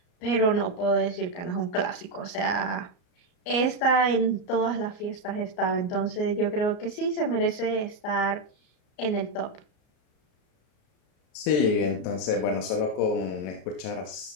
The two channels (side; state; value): right; late; 33 ms